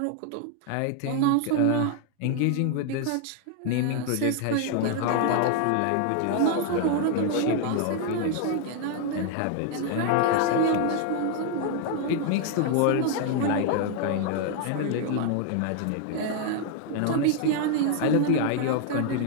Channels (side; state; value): both; different; correlation 0.00